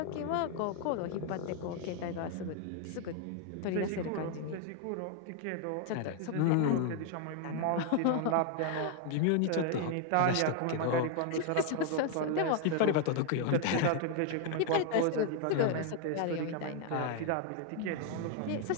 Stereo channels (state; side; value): different; both; correlation 0.00